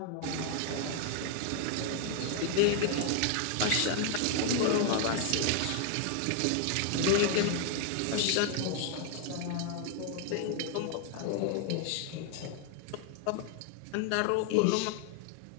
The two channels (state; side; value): different; both; correlation 0.01